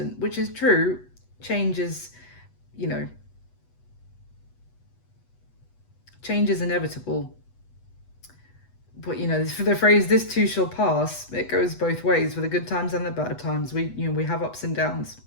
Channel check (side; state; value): right; late; 8.1 ms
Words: which is true. Change is, change is inevitable. But for the phrase "this too shall pass," it goes both ways, for the good times and the bad times. We have ups and downs.